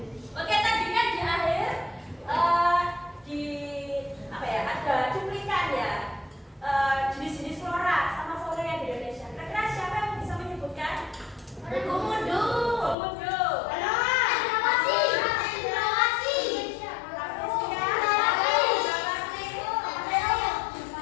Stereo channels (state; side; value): drops out; right; at 13.0 s